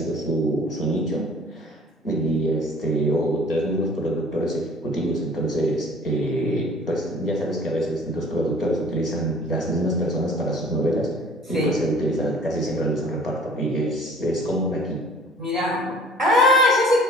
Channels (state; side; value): normal; both; correlation 0.51